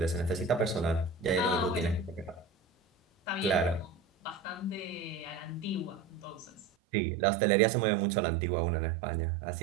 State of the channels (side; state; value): left; drops out; at 6.7 s